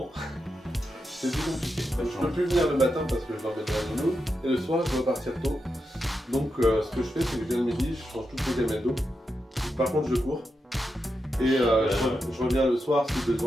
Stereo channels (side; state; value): both; normal; correlation 0.87